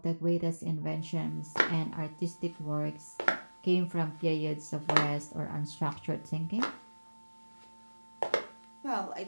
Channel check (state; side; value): inverted; both; correlation -1.00